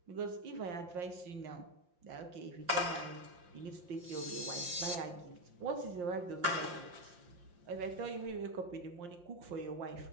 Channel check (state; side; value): late; left; 5.7 ms